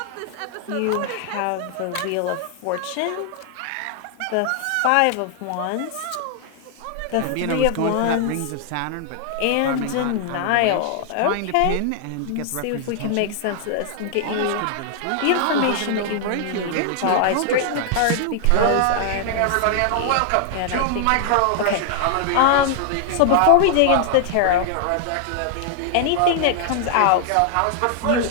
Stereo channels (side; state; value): both; different; correlation 0.00